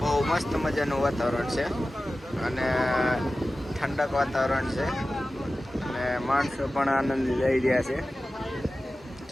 મસ્ત મજાનું વાતાવરણ છે અને ઠંડક વાતાવરણ છે અને માણસો પણ આનંદ લઈ રહ્યા છે.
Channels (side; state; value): both; normal; correlation 0.95